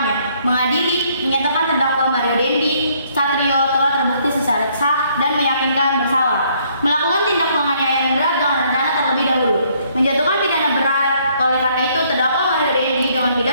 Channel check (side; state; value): both; inverted; correlation -0.66